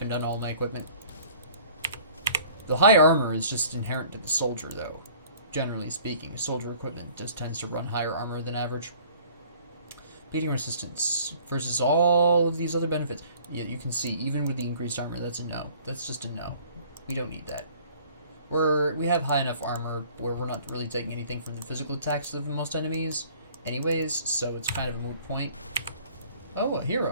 on all my equipment. The high armor is just inherent to the soldier, though. Generally speaking, soldier equipment just tends to run higher armor than average. Bleeding resistance versus all of these other benefits. Yeah, you can see, even with the increased armor, that's a no. That's just a no. We don't need that. We have high enough armor where we're not really taking anything from the physical attacks of most enemies anyways, so it's kind of a moot point. Oh, a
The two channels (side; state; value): both; inverted; correlation -0.53